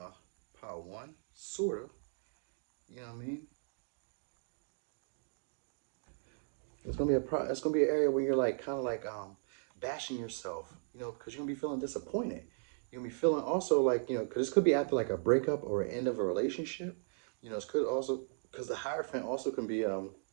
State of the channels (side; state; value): left; silent; digital silence